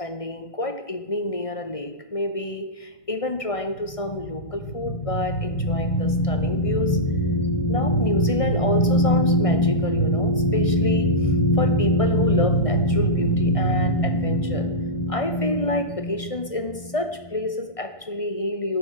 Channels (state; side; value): late; right; 1.6 ms